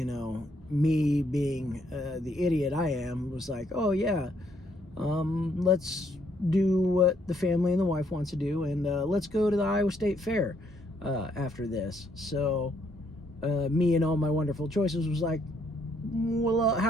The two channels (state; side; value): normal; both; correlation 0.71